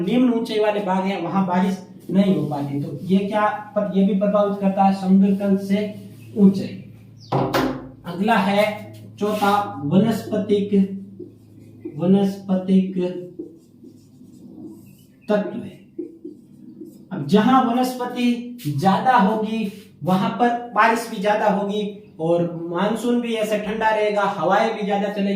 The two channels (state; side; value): identical; both; correlation 1.00